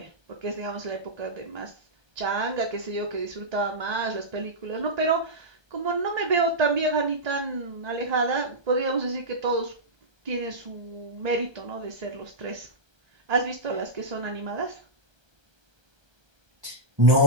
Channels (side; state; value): left; late; 1.2 ms